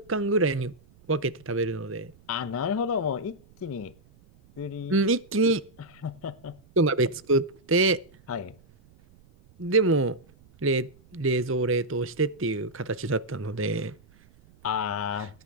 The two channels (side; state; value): right; noise; rumble, 28 dB below the sound